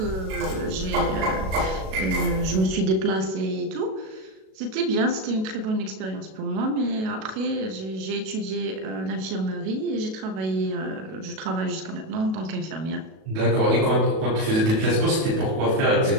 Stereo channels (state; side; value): late; left; 37 ms